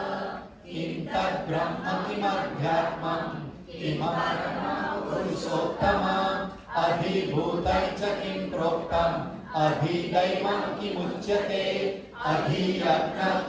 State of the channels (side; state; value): both; identical; correlation 1.00